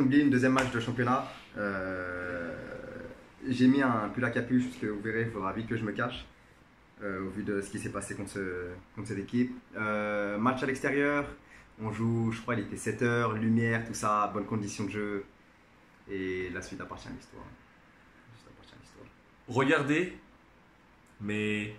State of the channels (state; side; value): identical; both; correlation 1.00